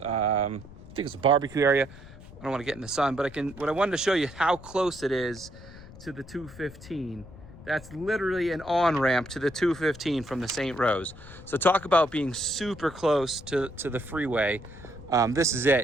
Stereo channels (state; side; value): noise; left; rumble, 17 dB below the sound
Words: I think it's a barbecue area. I don't want to get in the sun, but what I wanted to show you how close it is to the 215. That's literally an on-ramp to the 215 from the St. Rose. So talk about being super close to the freeway. This is